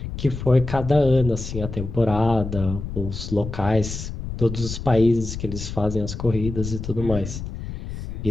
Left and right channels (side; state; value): left; noise; rumble, 7 dB below the sound